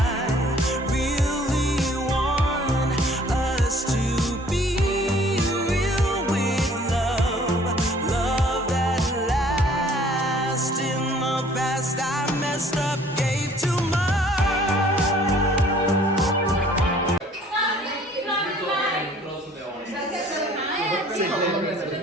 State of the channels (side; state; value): both; normal; correlation 0.56